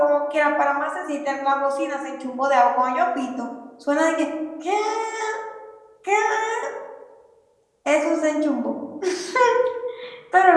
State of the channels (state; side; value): identical; both; correlation 1.00